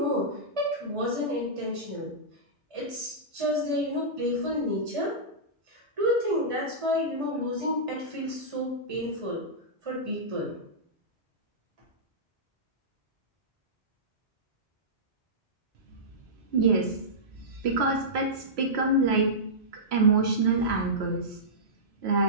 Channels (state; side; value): normal; both; correlation -0.15